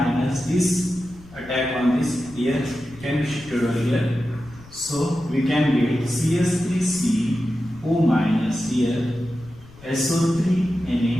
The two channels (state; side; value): noise; left; rumble, 22 dB below the sound